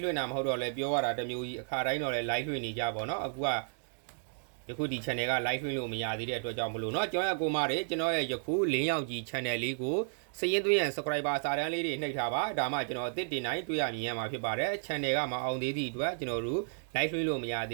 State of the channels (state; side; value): silent; left; digital silence